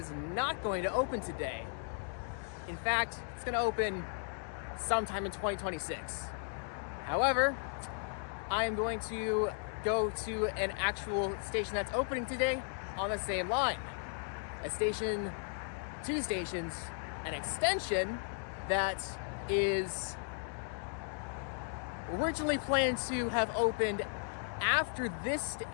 not going to open today. In fact, it's going to open sometime in 2026. However, I am going to go to an actual station that's opening today on the same line. Two stations, an extension that is originally planned to have opened after this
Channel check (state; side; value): silent; right; 54 dB below the other